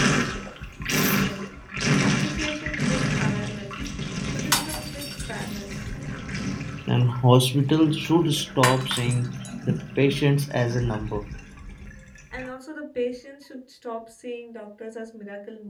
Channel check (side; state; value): both; identical; correlation 1.00